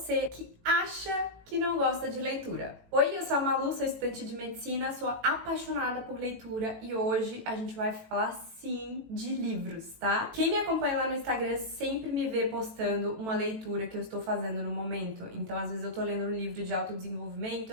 que acha que não gosta de leitura. Oi, eu sou a Malu, sou estudante de medicina, sou apaixonada por leitura e hoje a gente vai falar sim de livros, tá? Quem me acompanha lá no Instagram sempre me vê postando uma leitura que eu estou fazendo no momento. Então, às vezes eu tô lendo um livro de autodesenvolvimento,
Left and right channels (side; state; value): left; late; 18 ms